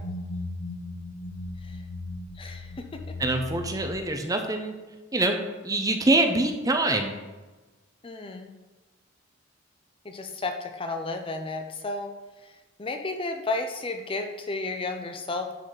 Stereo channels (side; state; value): both; normal; correlation 0.27